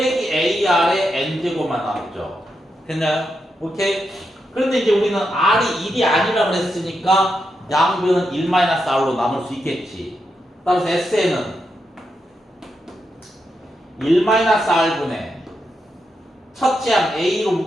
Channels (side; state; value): both; normal; correlation 0.85